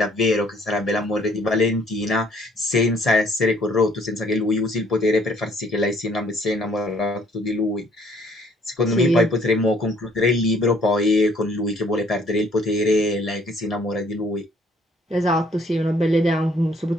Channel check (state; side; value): normal; both; correlation 0.62